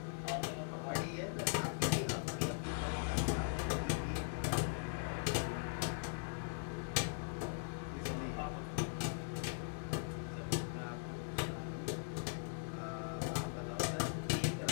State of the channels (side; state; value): right; silent; digital silence